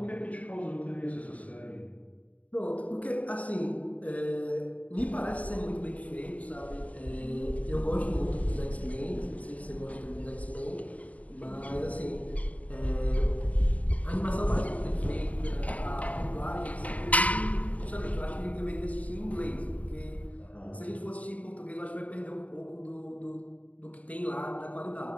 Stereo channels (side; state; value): right; late; 0.069 ms